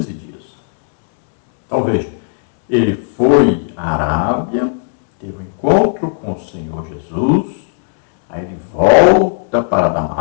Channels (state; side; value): silent; right; digital silence